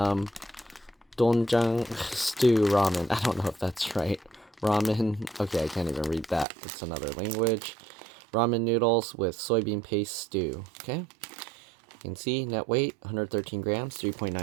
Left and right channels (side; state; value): left; drops out; at 6.5 s